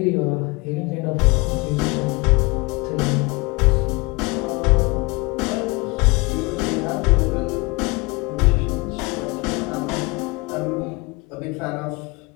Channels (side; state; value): right; quieter; 25.8 dB